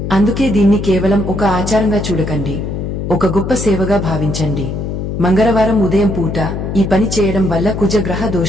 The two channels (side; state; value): left; noise; hum, 4 dB below the sound